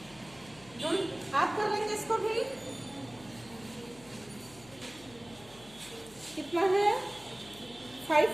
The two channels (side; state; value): left; noise; hum, 22 dB below the sound